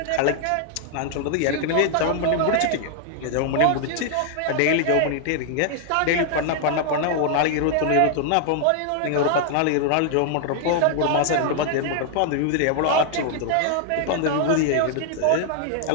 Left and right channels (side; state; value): both; different; correlation 0.00